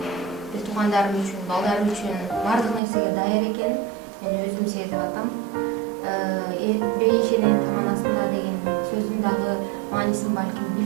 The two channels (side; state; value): left; drops out; at 2.8 s